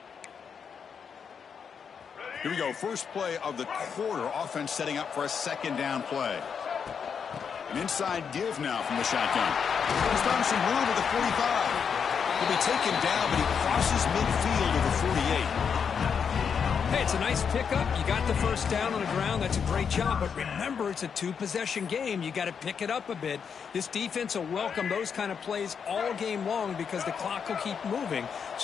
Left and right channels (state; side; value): quieter; right; 6.7 dB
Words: Here we go. First play of the quarter. Offense setting up for a second down play. An inside give now from the shotgun. He's found some room at the 45. He'll be taken down, but he crosses midfield to the 48. Hey, it's a nice pickup. You got the first down on the ground. That's a great job. But remember, it's a two-possession game. You got to pick it up a bit. This defense will welcome those kind of plays all game long because the clock will keep moving.